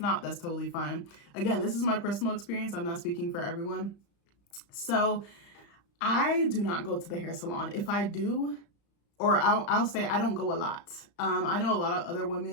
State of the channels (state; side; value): late; right; 35 ms